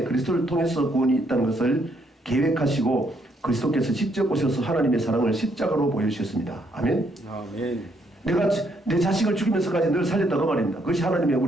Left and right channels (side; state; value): both; normal; correlation 0.72